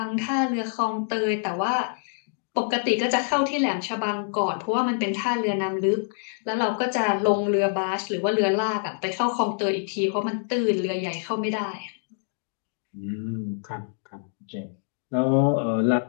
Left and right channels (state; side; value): silent; right; digital silence